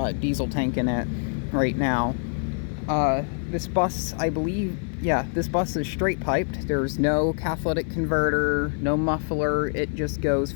diesel tank in it right now. This bus, I believe, this bus is straight piped. There's no catalytic converter, no muffler. It just goes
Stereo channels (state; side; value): silent; right; 61 dB below the other